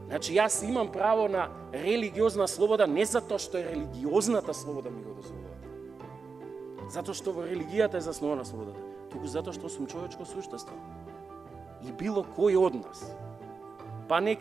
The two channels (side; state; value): left; quieter; 4.9 dB